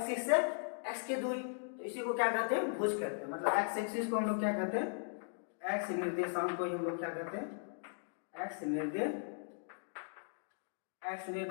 से x की दूरी, तो इसी को क्या कहते हैं? भुज कहते हैं। मतलब x एक्सिस को हम लोग क्या कहते हैं? x निर्देशांक को हम लोग क्या कहते हैं? एक्स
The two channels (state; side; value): silent; right; digital silence